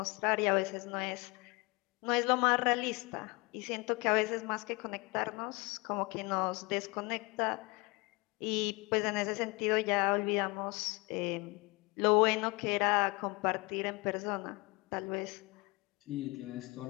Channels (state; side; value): quieter; right; 26.2 dB